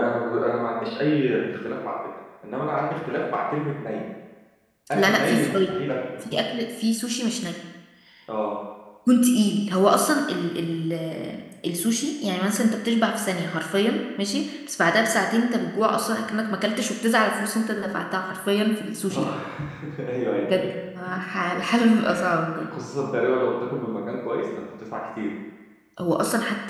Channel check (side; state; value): both; identical; correlation 1.00